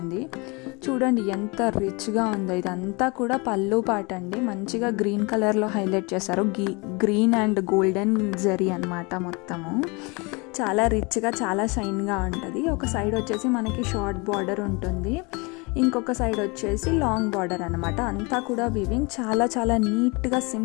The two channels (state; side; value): quieter; right; 28.2 dB